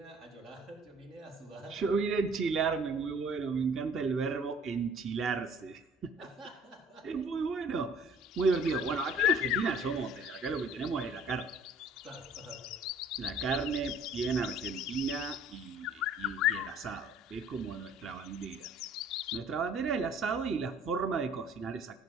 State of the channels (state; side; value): normal; both; correlation 0.54